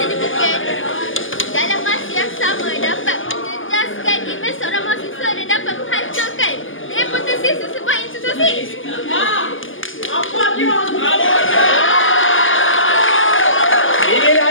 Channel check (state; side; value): late; right; 0.58 ms